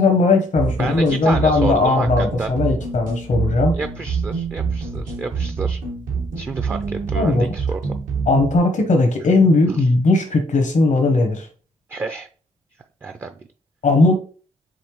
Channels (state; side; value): normal; both; correlation 0.66